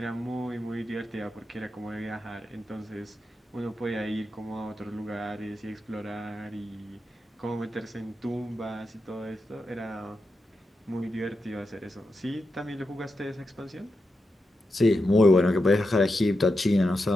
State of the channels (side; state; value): both; normal; correlation 0.87